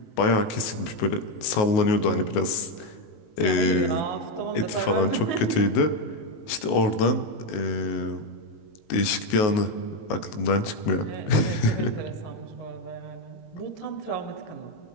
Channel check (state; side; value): late; right; 19 ms